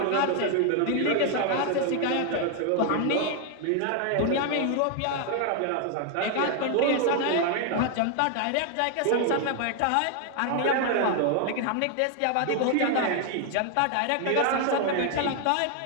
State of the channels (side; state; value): both; different; correlation 0.00